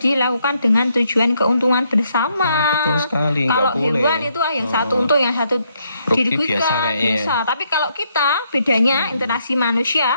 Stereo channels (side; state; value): both; inverted; correlation -0.74